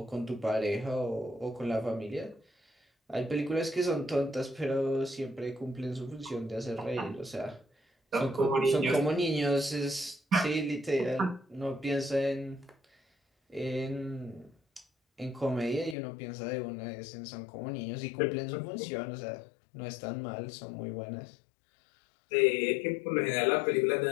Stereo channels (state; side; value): drops out; right; at 16.0 s